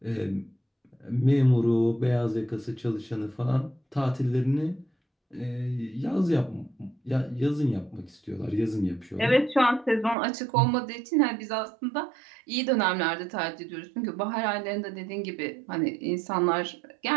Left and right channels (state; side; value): drops out; left; at 10.2 s